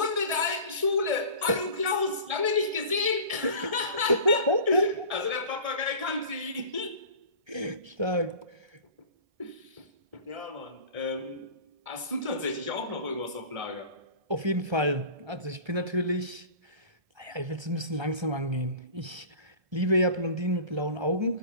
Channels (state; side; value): late; left; 1.7 ms